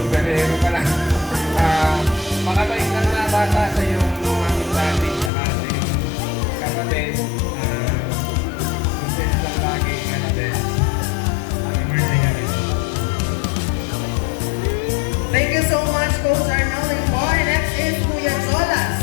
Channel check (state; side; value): drops out; right; at 5.3 s